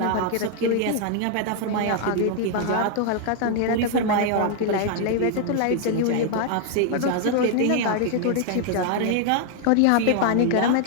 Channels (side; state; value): both; different; correlation 0.00